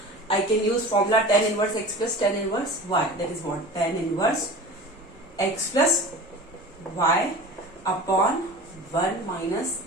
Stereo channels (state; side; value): normal; both; correlation 0.36